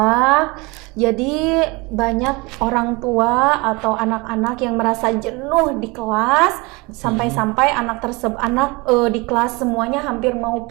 Jadi banyak orang tua atau anak-anak yang merasa jenuh di kelas sampai-sampai anak di kelas semuanya hampir mau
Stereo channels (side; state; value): left; quieter; 25.8 dB